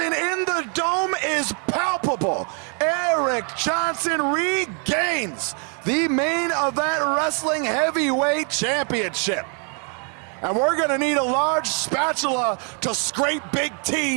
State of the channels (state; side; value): quieter; left; 39.7 dB